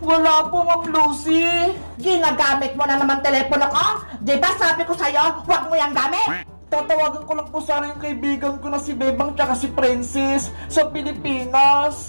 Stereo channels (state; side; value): inverted; both; correlation -1.00